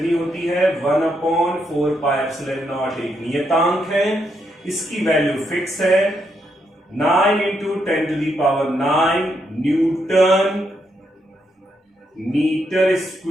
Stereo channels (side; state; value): both; normal; correlation 0.79